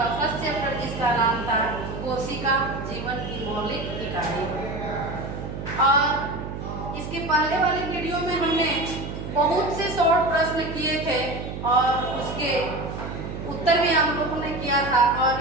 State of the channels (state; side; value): noise; right; hum, 7 dB below the sound